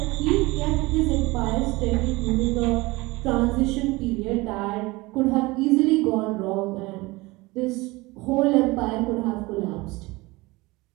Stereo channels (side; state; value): left; quieter; 22.3 dB